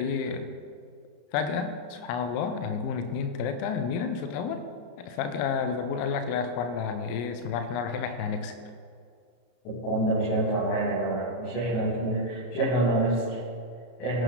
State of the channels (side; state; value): right; late; 33 ms